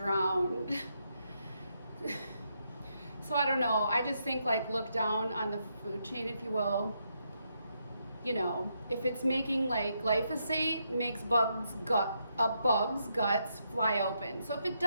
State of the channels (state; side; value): inverted; both; correlation -0.79